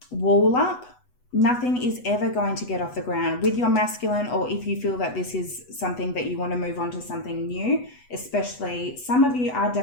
wall up, nothing is ever going to get off the ground with your masculine, or if you feel that this is something that you want to move on to something new, especially some of you are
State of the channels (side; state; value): right; late; 8.1 ms